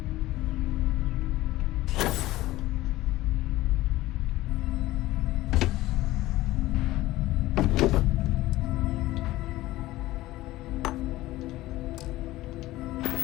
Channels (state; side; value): quieter; right; 17.0 dB